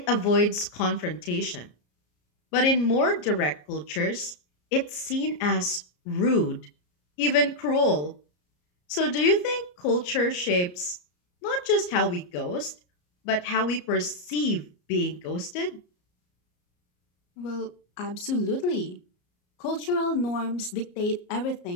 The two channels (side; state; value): right; late; 34 ms